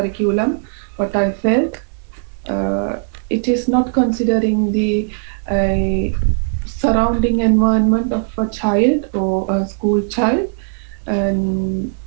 What I felt, it is not considering the surrounding environment of a child or a school child, and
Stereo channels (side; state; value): left; silent; 67 dB below the other